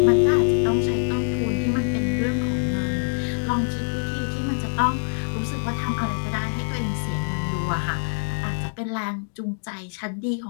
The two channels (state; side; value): silent; right; digital silence